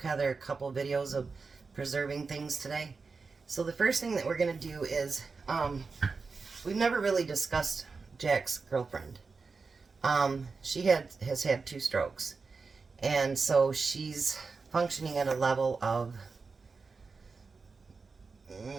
a couple videos of preserving things today. So, the first thing that we're going to do is, we've never really discussed Jack's girlfriend. She has had 2 strokes. And so, she's functioning at a level of...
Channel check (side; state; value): left; quieter; 4.5 dB